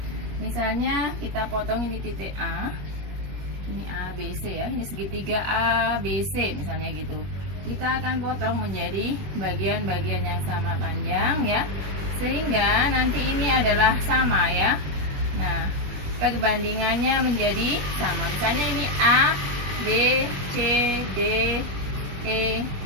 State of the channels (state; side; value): late; left; 21 ms